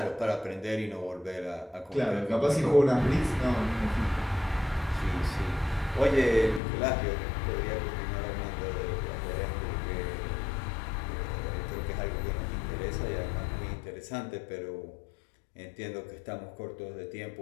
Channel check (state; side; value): drops out; right; at 6.6 s